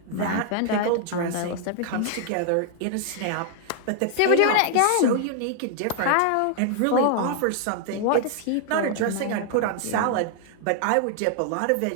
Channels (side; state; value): both; different; correlation 0.00